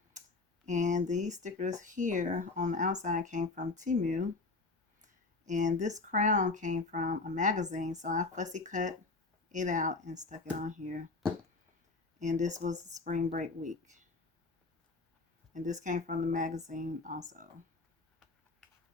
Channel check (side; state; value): right; quieter; 3.7 dB